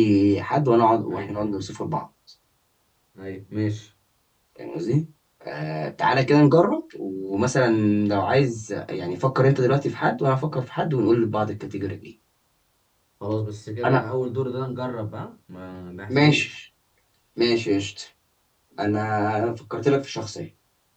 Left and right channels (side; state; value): both; identical; correlation 1.00